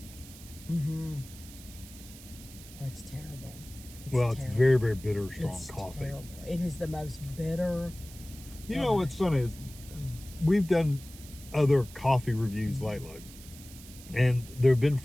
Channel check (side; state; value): right; noise; hiss, 18 dB below the sound